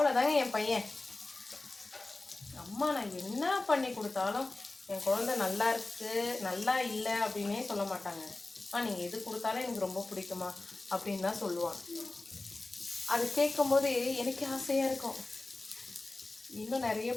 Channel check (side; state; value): right; quieter; 3.1 dB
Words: என் பையன். அம்மா அம்மா நான் என்ன பண்ணி கொடுத்தாலும் என் குழந்தை நல்லா இருக்கு நல்லா இல்லை அப்படின்னே சொல்ல மாட்டாங்க. நீங்கள் எது கொடுத்தாலும் எனக்கு ரொம்ப பிடிக்குமா அப்படின்னு தான் சொல்லுவான். அது கேட்கும் போது எனக்கு ஆசையாக இருக்கும், இன்னும் நிறைய